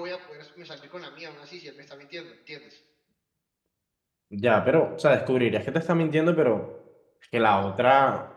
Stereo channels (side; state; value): both; identical; correlation 1.00